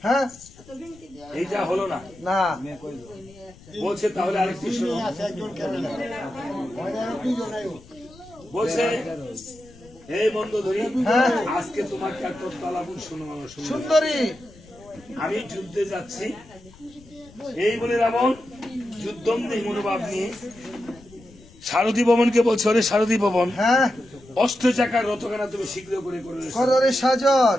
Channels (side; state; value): left; noise; rumble, 23 dB below the sound